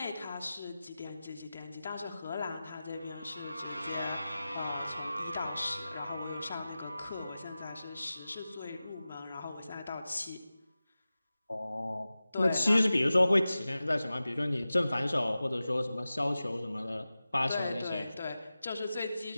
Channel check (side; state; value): both; inverted; correlation -0.95